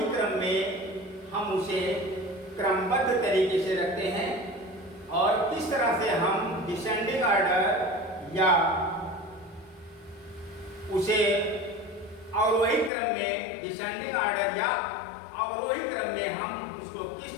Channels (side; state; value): right; drops out; at 12.9 s